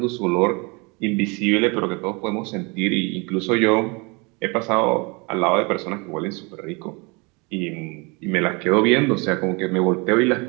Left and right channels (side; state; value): left; quieter; 29.3 dB